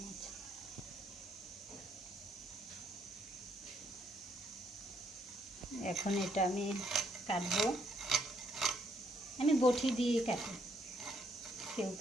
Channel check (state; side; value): normal; both; correlation 0.71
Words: মাছ। এখন এটা আমি কাটবো। আমি বটি দিয়ে কাটি, কেউ